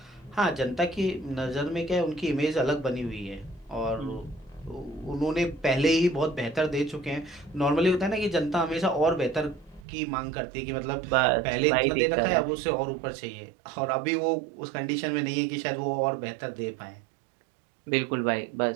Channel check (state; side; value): drops out; left; at 9.9 s